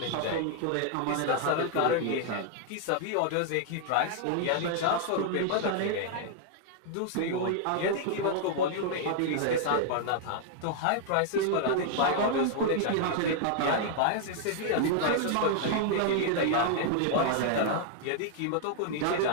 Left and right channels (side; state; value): both; different; correlation -0.01